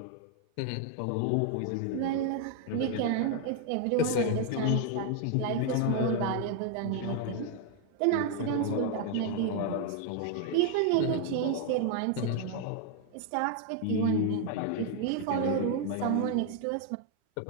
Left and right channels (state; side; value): different; both; correlation 0.01